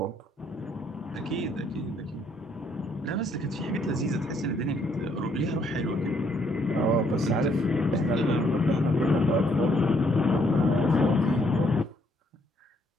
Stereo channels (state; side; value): normal; both; correlation 0.69